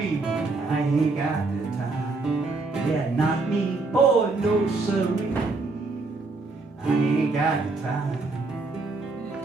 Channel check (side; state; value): left; quieter; 3.6 dB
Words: I ain't got the time. Yeah, not me, boy, no siree, I ain't got the time.